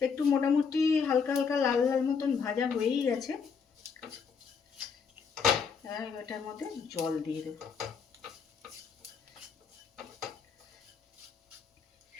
একটু মোটামুটি হালকা হালকা লাল লাল মতন ভাজা হয়েই গেছে, এটার মধ্যে জল দিয়ে দেব।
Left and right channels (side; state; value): right; quieter; 5.9 dB